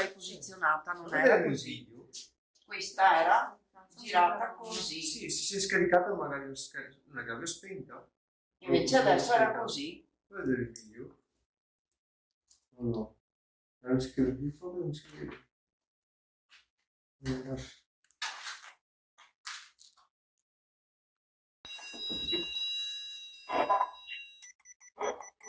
posizionata, non era così. Video. Questa era girata così. Sì, si è scaricata magari una chiave spenta. Invece adesso era così. Puoi vedere il video? No, no. Era scritto di foto, non si vede.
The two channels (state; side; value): identical; both; correlation 1.00